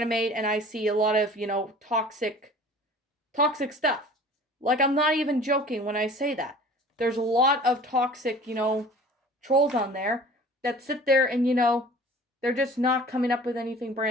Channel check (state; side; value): normal; both; correlation 0.45